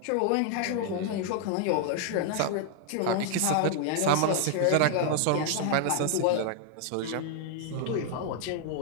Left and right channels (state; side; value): different; both; correlation 0.00